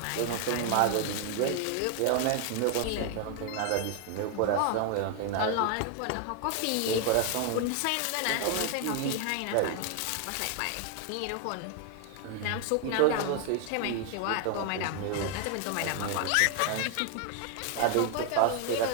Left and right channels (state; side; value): different; both; correlation 0.00